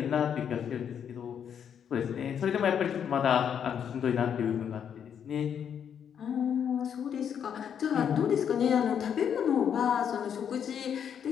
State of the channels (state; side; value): quieter; right; 8.2 dB